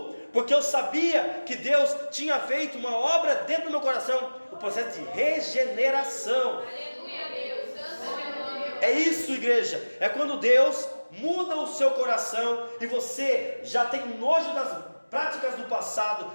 porque eu sabia que Deus tinha feito uma obra dentro do meu coração, o processo de regeneração. Aleluia, Deus. Santo é o nome. É isso, igreja, é quando Deus muda o seu coração e você já tem nojo das práticas do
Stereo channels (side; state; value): both; inverted; correlation -1.00